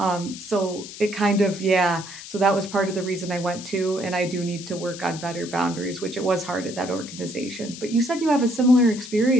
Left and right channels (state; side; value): noise; left; hiss, 13 dB below the sound